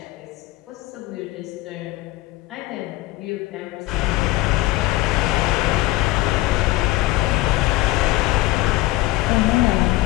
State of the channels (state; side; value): quieter; right; 18.4 dB